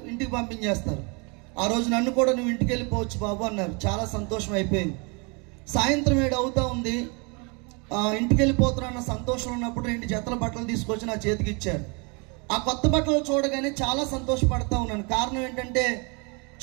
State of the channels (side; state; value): left; quieter; 32.1 dB